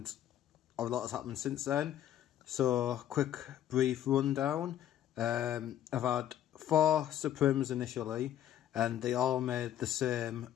a lot has happened since then. So quick brief rundown. I've had 4 Suprims initially and they all made the same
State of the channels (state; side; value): quieter; right; 11.3 dB